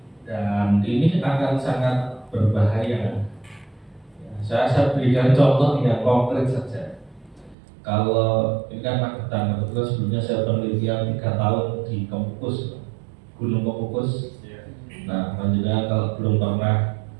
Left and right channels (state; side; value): drops out; left; at 7.6 s